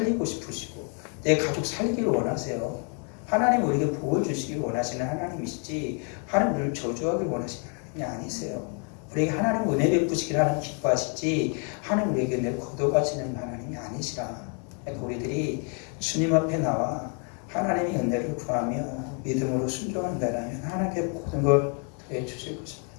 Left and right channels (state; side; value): quieter; right; 40.0 dB